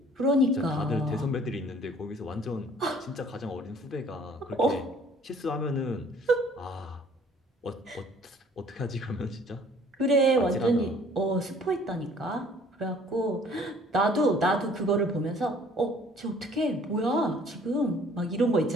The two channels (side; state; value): both; normal; correlation 0.55